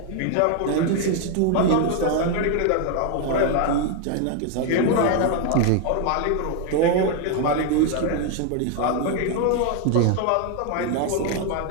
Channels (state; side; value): different; both; correlation 0.01